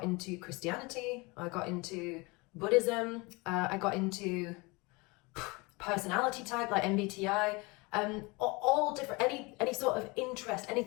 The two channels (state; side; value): quieter; right; 26.0 dB